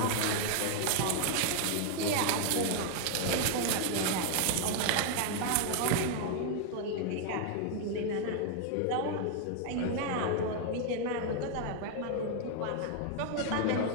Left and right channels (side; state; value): both; different; correlation 0.00